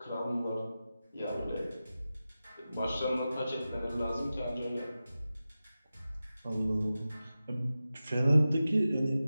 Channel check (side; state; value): both; inverted; correlation -0.94